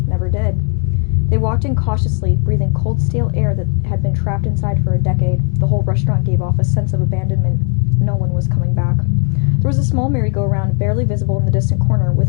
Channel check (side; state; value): right; quieter; 38.4 dB